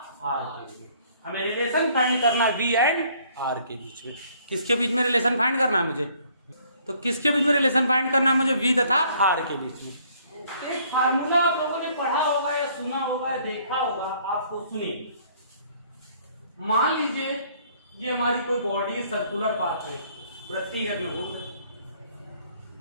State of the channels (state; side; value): inverted; both; correlation -0.61